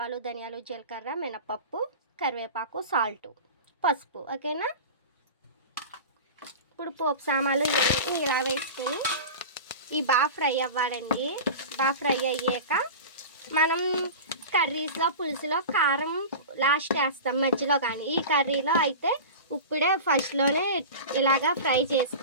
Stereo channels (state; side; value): inverted; both; correlation -0.31